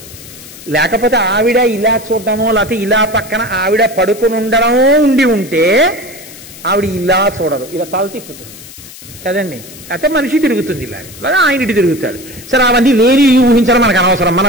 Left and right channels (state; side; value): noise; left; hiss, 17 dB below the sound